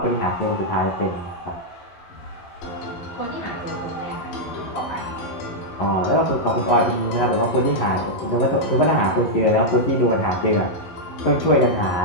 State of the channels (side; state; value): right; late; 11 ms